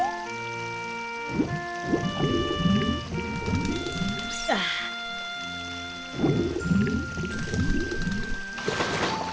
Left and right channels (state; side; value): identical; both; correlation 1.00